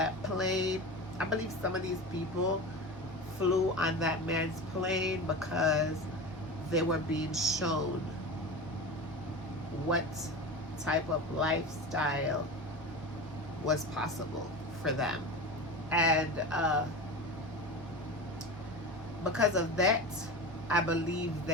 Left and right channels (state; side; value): normal; both; correlation 0.28